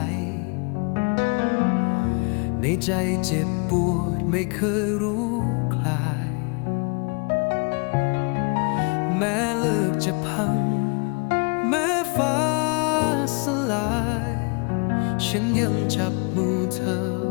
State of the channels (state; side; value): quieter; right; 33.1 dB